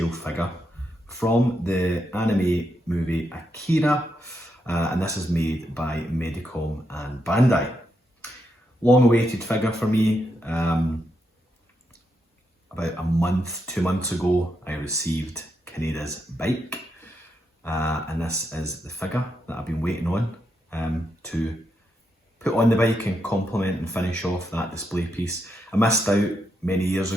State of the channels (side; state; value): both; normal; correlation 0.82